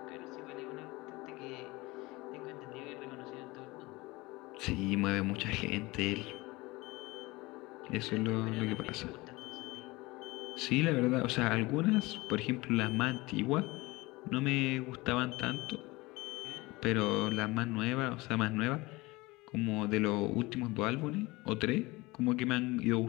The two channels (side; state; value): right; quieter; 22.0 dB